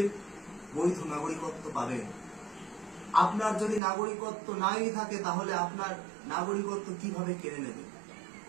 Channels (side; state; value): left; drops out; at 3.8 s